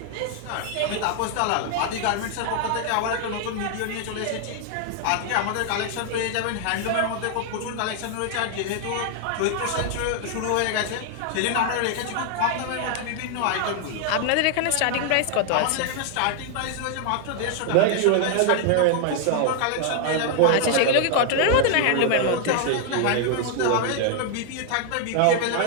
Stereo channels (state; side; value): different; both; correlation 0.00